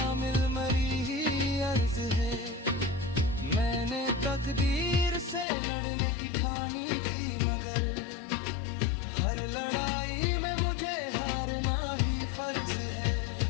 मरी ही अर्ज है। मैंने तकदीर से लड़ने की ठानी थी, मगर हर लड़ाई में मुझे हारना ही फर्ज है।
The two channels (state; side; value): drops out; right; at 5.5 s